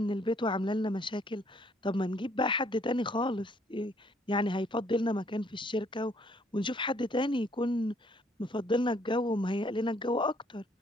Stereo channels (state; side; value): normal; both; correlation 0.65